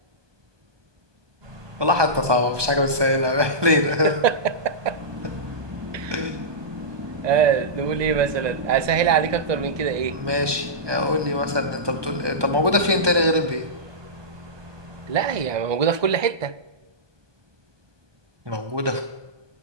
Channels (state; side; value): late; left; 1.2 ms